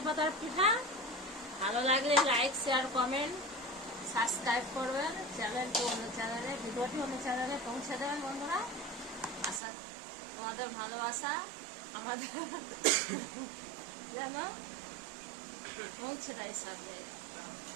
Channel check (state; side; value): drops out; left; at 9.6 s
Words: পাতার পিঠা। ভালো লাগলে লাইক, শেয়ার, কমেন্ট, সাবস্ক্রাইব করবেন চ্যানেলটি, অন্য চ্যানেলে ভিডিওটি অন্য চ্যানেলে পৌঁছে দেবেন বন্ধুরা। আশা তোমাদের ভালোবাসা আমাদের যেন পৌঁছে দেয় সাথে।